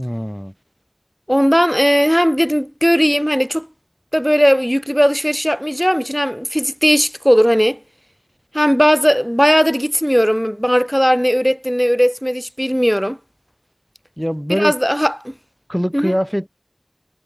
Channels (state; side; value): identical; both; correlation 1.00